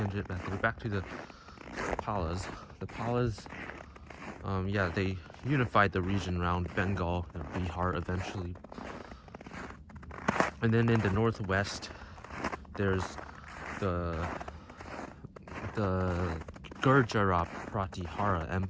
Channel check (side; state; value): both; identical; correlation 1.00